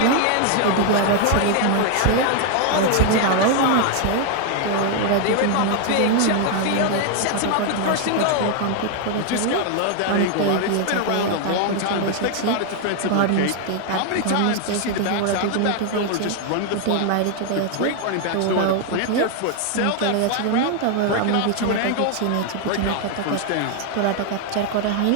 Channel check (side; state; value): both; different; correlation 0.00